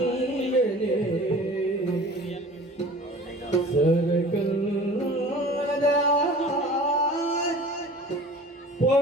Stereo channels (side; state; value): both; normal; correlation 0.43